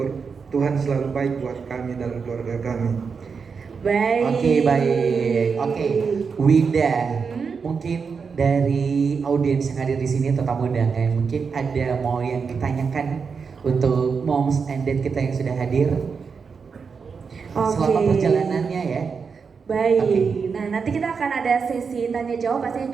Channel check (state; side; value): quieter; left; 5.6 dB